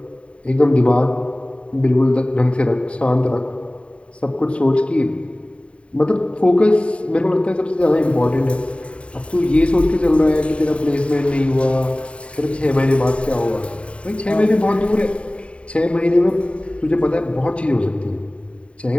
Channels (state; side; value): late; right; 0.061 ms